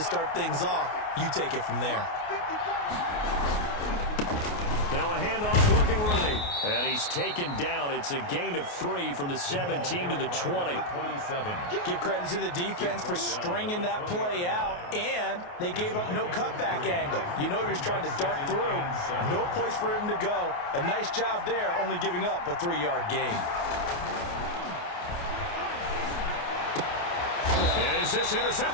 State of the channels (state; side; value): late; right; 28 ms